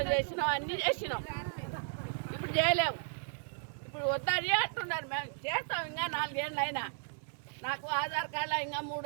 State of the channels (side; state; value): left; silent; 55 dB below the other